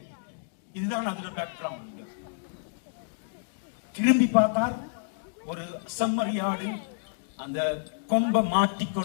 இதுதான் அதோட பேக்ரவுண்ட். திரும்பி பார்த்தார், ஒரு செம்மறியாடு அந்த கொம்பை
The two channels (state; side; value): silent; right; digital silence